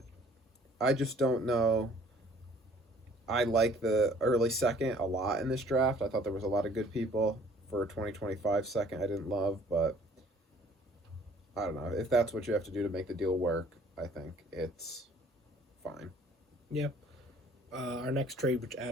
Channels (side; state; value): both; normal; correlation 0.55